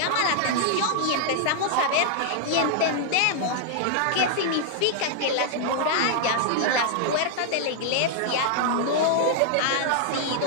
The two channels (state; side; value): different; both; correlation -0.01